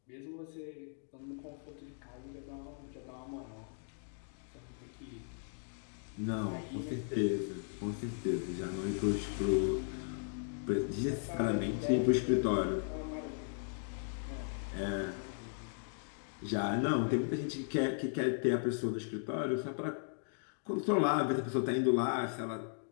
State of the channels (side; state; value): right; silent; digital silence